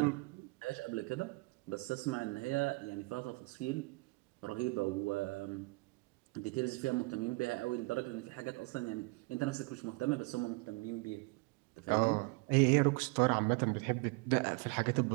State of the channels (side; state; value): left; quieter; 26.4 dB